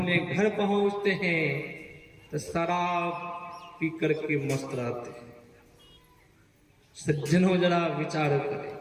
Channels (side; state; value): both; identical; correlation 1.00